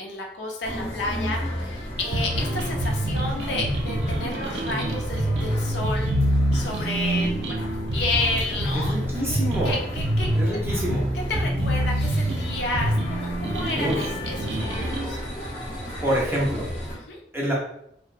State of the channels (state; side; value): normal; both; correlation 0.68